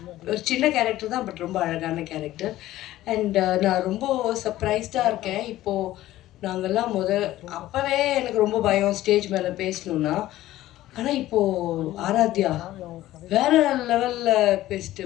ஒரு சின்ன கேரக்டர் தான், பட் ரொம்ப அழகான கேரக்டர். அண்ட் நான் ரொம்ப சர்ப்ரைஸ்டாக இருக்கேன். இப்போது நாங்கள்லாம் அப்போவே எனக்கு ரொம்ப பயம் ஸ்டேஜ் மேலே பேசணுன்னா. ஆனால் இப்போது ஆராத்யா வேறு லெவலில் பேசிட்டு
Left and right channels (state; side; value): quieter; right; 15.1 dB